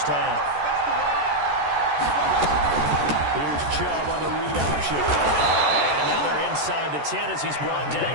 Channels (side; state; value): left; late; 14 ms